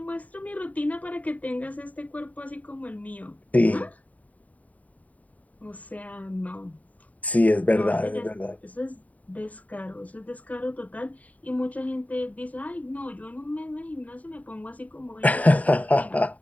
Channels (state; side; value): late; right; 0.071 ms